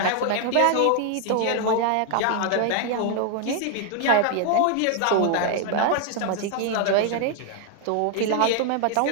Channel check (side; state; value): both; different; correlation 0.00